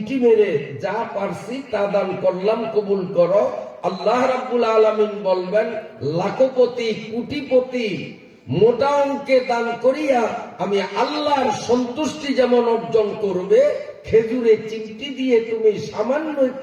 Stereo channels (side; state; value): both; identical; correlation 1.00